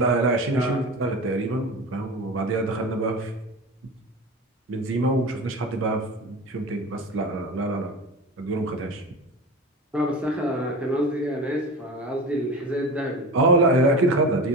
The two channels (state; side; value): normal; both; correlation 0.29